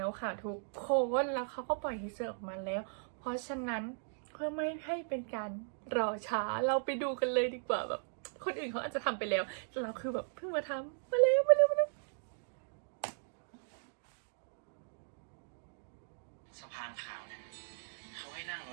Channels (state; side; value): silent; left; digital silence